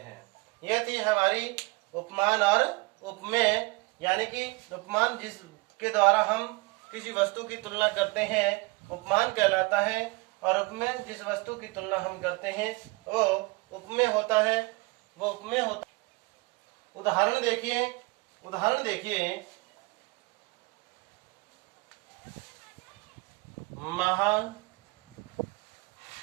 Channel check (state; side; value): quieter; left; 26.3 dB